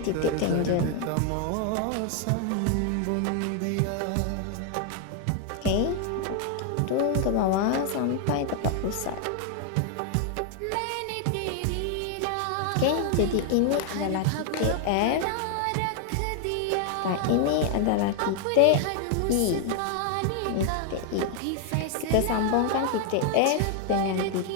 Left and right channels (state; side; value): different; both; correlation 0.00